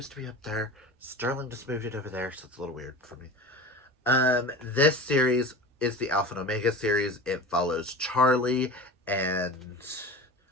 to be up there. Sterling just moved it over there, so it's a little weird for me. This series is the Alpha and Omega series. It follows Charles and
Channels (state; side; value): normal; both; correlation 0.33